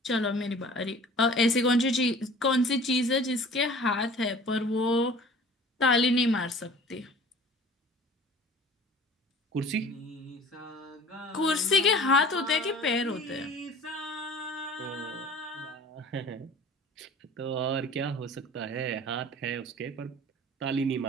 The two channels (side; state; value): both; normal; correlation 0.45